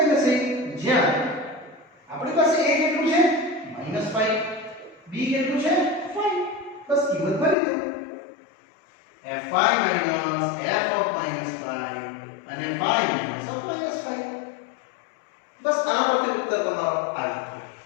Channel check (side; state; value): right; drops out; at 7.6 s